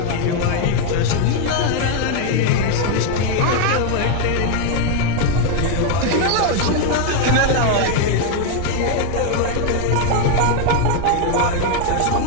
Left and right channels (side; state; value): both; different; correlation 0.01